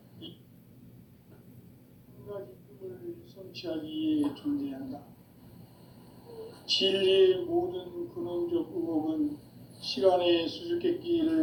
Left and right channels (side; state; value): both; identical; correlation 1.00